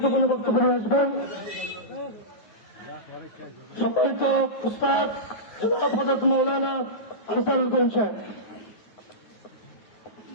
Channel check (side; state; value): right; late; 9.5 ms